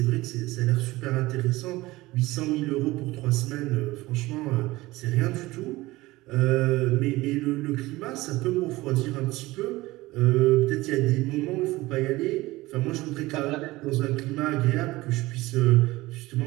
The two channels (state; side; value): quieter; left; 19.4 dB